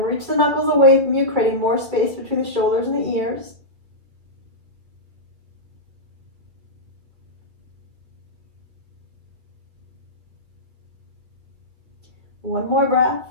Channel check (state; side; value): late; left; 2.3 ms